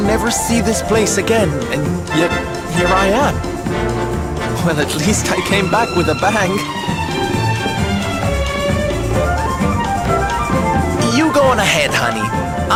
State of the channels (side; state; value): both; identical; correlation 1.00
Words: never see this place again, and yet here I am. Well, at least I came back with a bang. You go on ahead, honey.